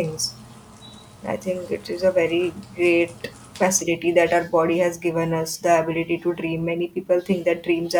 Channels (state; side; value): identical; both; correlation 1.00